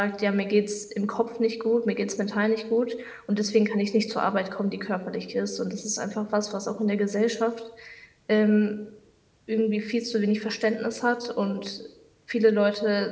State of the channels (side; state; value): both; identical; correlation 1.00